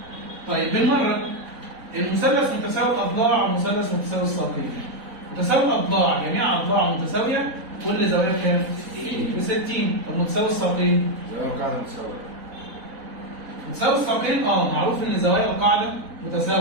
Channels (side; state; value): left; late; 3.9 ms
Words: طيب بالمرة المثلث متساوي الأضلاع ومثلث متساوي الساقين. متساوي الأضلاع جميع أضلاع متساوية كل زاوية بكام؟ 60. طب متساوي الساقين؟ متساوي الساقين معروف ان زوايا القاعده